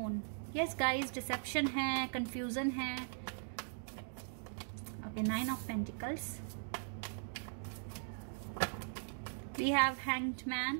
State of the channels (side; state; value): left; silent; digital silence